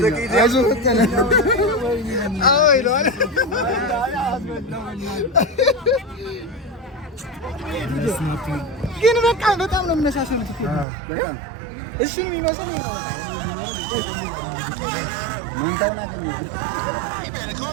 አይዞህ ፈጠነ። አዎ ይለዋል። ግን በቃ በጣም ነው የሚመሳሰሉት። በጣም እሱን የሚመስለው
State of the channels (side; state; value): left; drops out; at 10.9 s